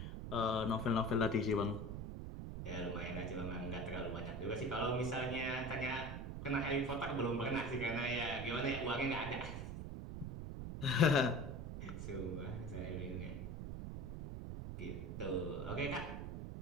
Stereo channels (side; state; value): right; noise; rumble, 6 dB below the sound